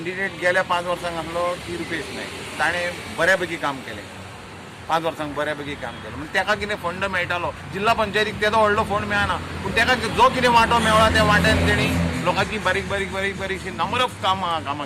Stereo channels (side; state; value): both; identical; correlation 1.00